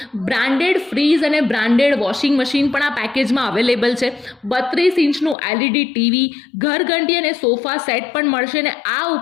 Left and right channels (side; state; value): right; drops out; at 5.4 s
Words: બ્રાન્ડેડ ફ્રીઝ અને બ્રાન્ડેડ વોશિંગ મશીન પણ આ પેકેજમાં અવેલેબલ છે. 32 ઇંચનું LED ટીવી, ઘરઘંટી અને સોફા સેટ પણ મળશે ને આ